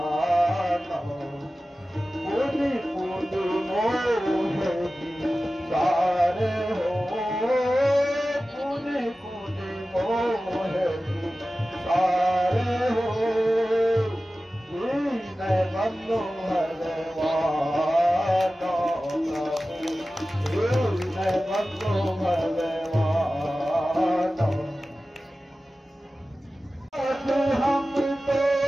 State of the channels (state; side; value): normal; both; correlation 0.95